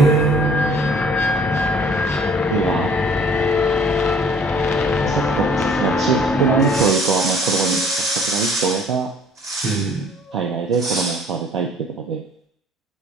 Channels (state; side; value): normal; both; correlation 0.55